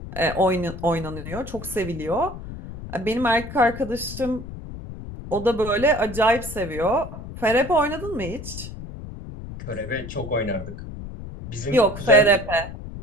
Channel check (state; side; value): noise; left; rumble, 11 dB below the sound